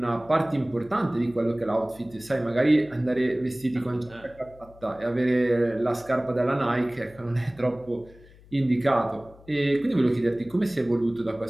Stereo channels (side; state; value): left; noise; hum, 24 dB below the sound